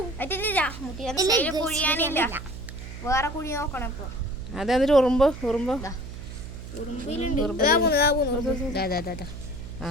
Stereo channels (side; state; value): right; noise; hum, 11 dB below the sound